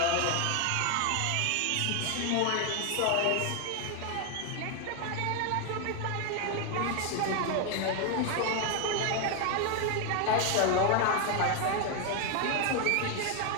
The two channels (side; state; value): both; different; correlation 0.01